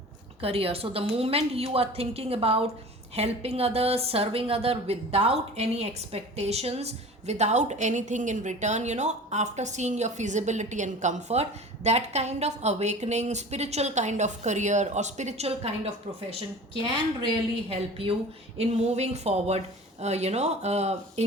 So the moment you are thinking about helping others, serving others without any expectations, without anything in return, after seeing your feasibility and comfort, that kind of awakening, spiritual kind of career or spiritual kind of profession can really help you in moving forward,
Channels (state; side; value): normal; both; correlation 0.39